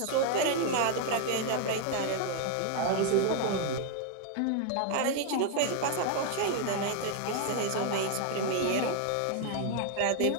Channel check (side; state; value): both; different; correlation 0.00